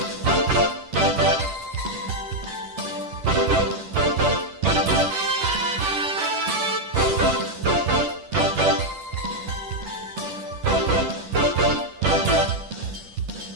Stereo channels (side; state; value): left; late; 10 ms